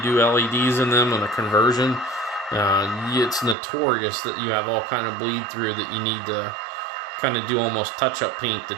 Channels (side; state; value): left; drops out; at 3.6 s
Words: do LEDs in them on a conversion, it's notorious that you have all kind of bleed through that you need to kind of do almost touch-up paint to